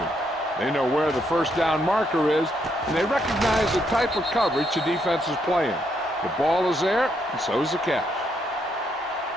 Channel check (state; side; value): normal; both; correlation 0.76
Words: They know where the first down marker is, and they recognize the type of coverage the defense is playing. The ball is there, and so is the catch.